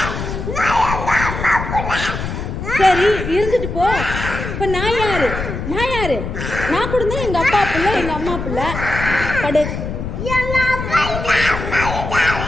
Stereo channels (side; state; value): left; noise; rumble, 5 dB below the sound